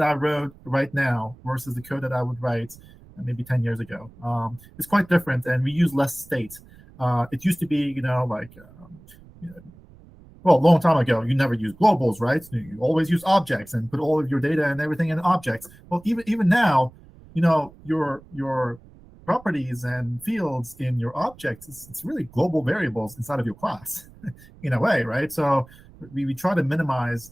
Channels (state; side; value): noise; right; rumble, 23 dB below the sound